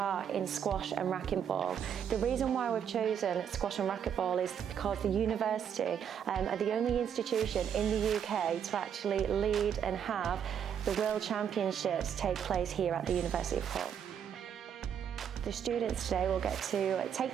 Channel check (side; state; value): left; quieter; 8.4 dB